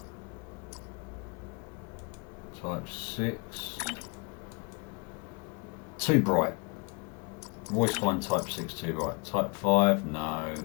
Type 6. Too bright. Always find type 6 too bright. Type 5, no.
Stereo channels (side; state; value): right; quieter; 32.0 dB